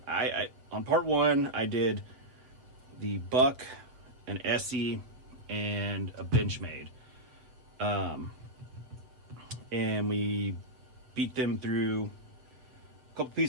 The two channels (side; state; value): left; late; 7.9 ms